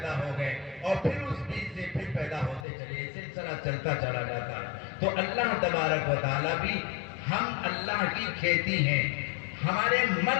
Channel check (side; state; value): right; drops out; at 2.7 s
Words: ہو گئے اور پھر اس بیج سے پھر پیدا ہوتے چلے، سلسلہ چلتا چلا جاتا ہے. تو اللہ تبارک و تعالیٰ بھی، ہم اللہ کی کھیتی ہیں. ہمارے